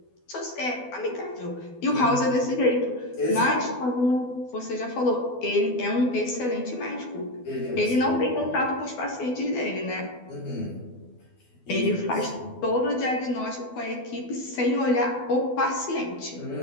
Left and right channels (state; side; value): late; right; 12 ms